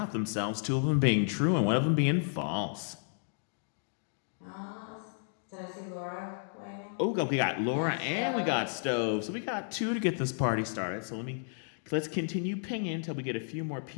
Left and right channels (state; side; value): silent; right; digital silence